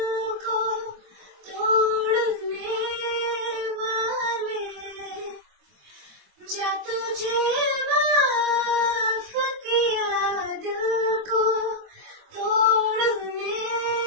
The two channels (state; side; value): late; left; 24 ms